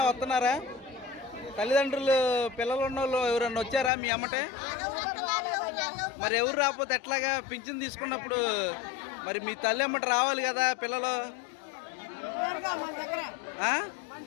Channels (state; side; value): drops out; right; at 3.9 s